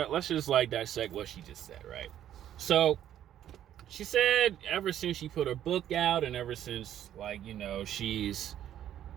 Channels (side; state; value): left; quieter; 11.0 dB